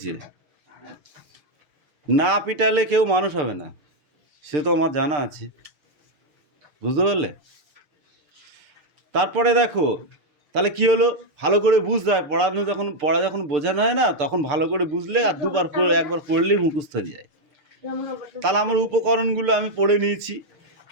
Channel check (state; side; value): late; left; 6.7 ms